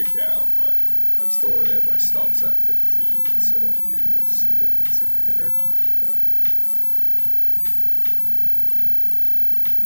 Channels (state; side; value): inverted; both; correlation -1.00